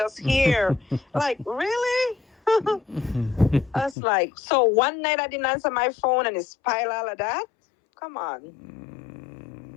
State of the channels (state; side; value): drops out; right; at 4.0 s